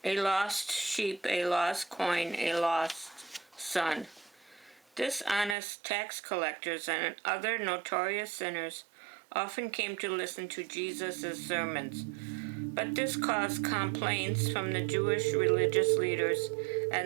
A lost sheep, a lost coin, a lost son. Dishonest tax collectors and other notorious sinners often came to listen to Jesus' sermons, but this caused complaints from the Jewish religious leaders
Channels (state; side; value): drops out; left; at 5.6 s